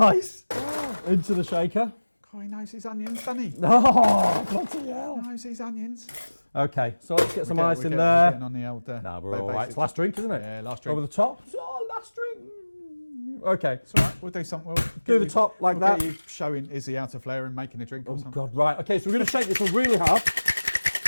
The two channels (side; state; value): both; inverted; correlation -1.00